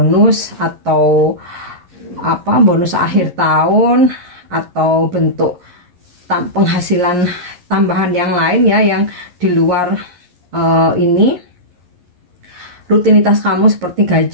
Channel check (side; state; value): left; late; 11 ms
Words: atau apa, bonus akhir tahun atau bentuk penghasilan tambahan yang lain ya, yang di luar ini rutinitas kamu seperti